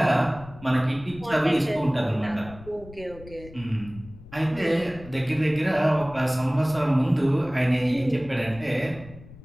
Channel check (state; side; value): noise; left; rumble, 19 dB below the sound